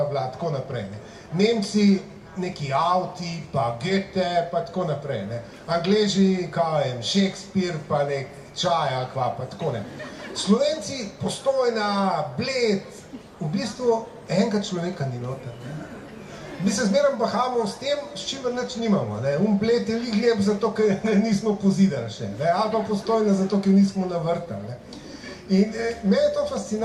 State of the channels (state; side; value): identical; both; correlation 1.00